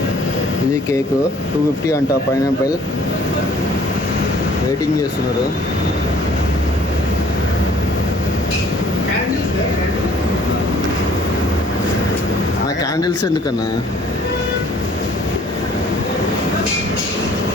ఇది కేక్ 250 అంట. పైనాపిల్ వెయిటింగ్ చేస్తున్నారు. క్యాండిల్స్ ఎందుకన్నా?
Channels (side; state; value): both; normal; correlation 0.56